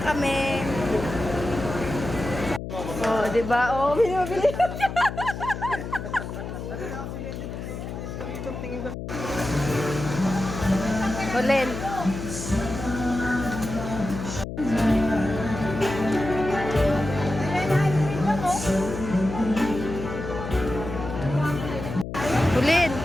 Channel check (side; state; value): left; noise; hum, 7 dB below the sound